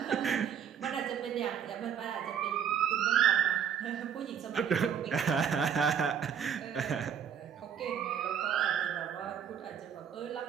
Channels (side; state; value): left; quieter; 8.1 dB